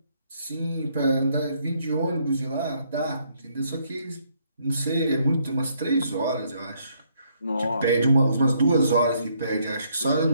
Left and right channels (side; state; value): both; inverted; correlation -0.70